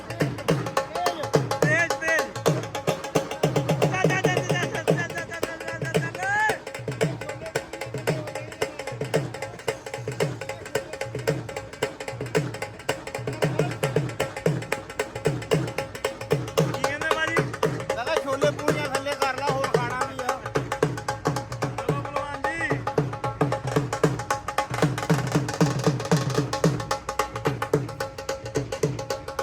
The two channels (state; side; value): identical; both; correlation 1.00